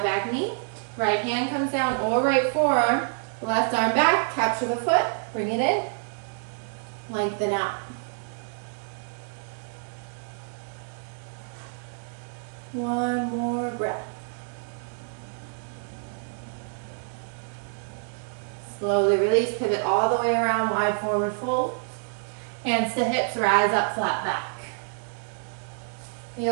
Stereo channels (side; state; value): left; silent; digital silence